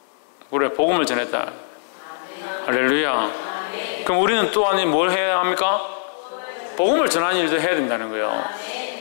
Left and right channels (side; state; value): right; silent; digital silence